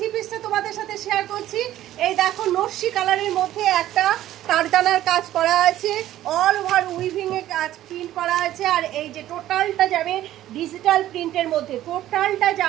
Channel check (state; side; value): quieter; left; 13.5 dB